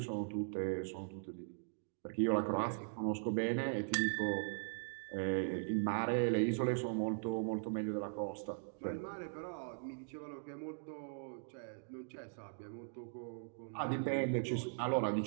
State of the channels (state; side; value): silent; left; digital silence